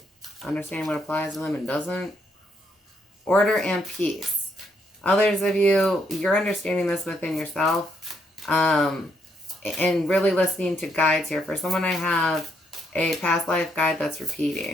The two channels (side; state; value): both; normal; correlation 0.75